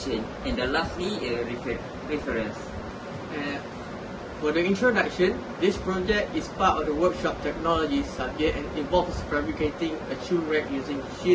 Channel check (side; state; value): both; identical; correlation 1.00